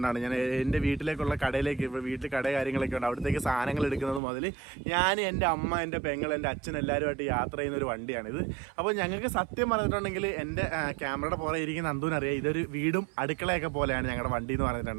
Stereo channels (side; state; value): left; drops out; at 4.2 s